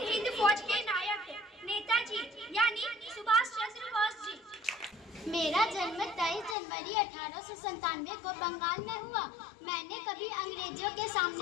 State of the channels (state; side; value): drops out; right; at 6.6 s